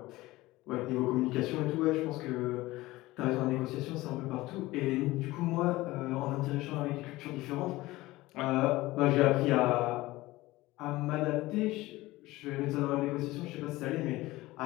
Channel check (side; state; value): right; quieter; 18.8 dB